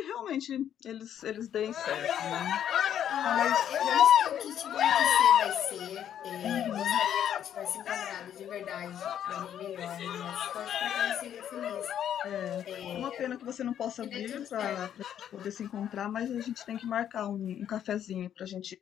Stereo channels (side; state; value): right; quieter; 9.9 dB